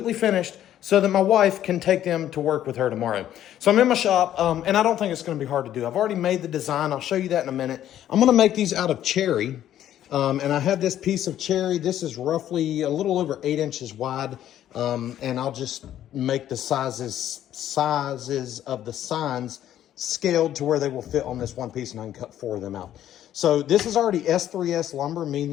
finished, so that my wife can take them to work with her tomorrow. So I'm in my shop, and I don't think it's going to be hard to do. I've already made the design. I'll show you that in a minute. I'm going to make these out of cherry, and I have this piece of cherry. This is roughly a little over 8 inches wide, and I'll just make the sizes of the signs scaled to where they will fit on this one piece, and I can cut 4 of them out. So this is already S3S lumber,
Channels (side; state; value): right; quieter; 11.6 dB